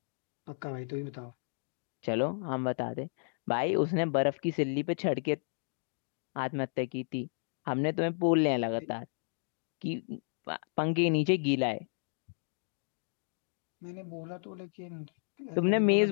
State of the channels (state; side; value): silent; right; digital silence